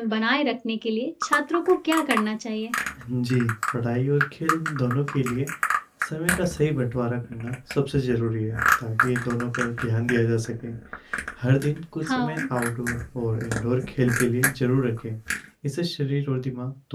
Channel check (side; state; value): both; identical; correlation 1.00